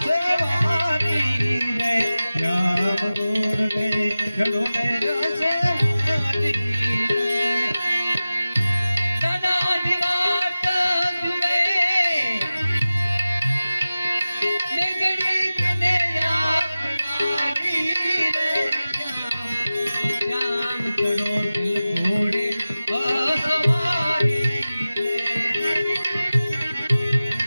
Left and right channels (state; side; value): inverted; both; correlation -0.96